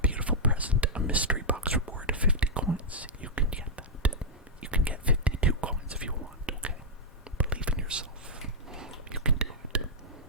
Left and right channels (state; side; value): normal; both; correlation -0.07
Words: present, a mystery box reward of 50 coins. You can get that. You can get 52 coins if you want, okay? Believe in yourself. You can do it.